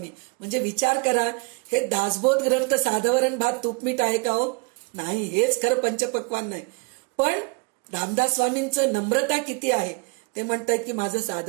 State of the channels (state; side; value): quieter; left; 31.5 dB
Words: म्हणजे विचार करा, हे दासबोध ग्रंथ साधवरण भात तूपमीठ आहे का हो? नाही, हेच खरं पंचपक्वान्न आहे. पण रामदास स्वामींचं नम्रता किती आहे. ते म्हणतायत की माझं